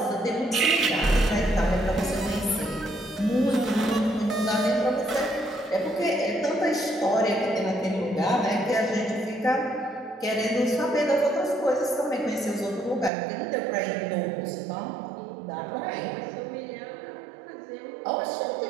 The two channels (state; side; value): drops out; left; at 13.1 s